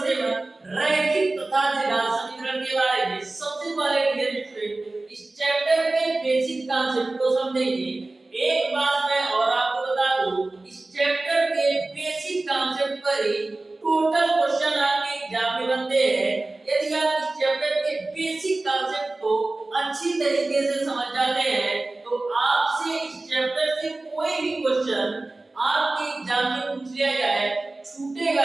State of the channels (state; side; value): quieter; left; 3.0 dB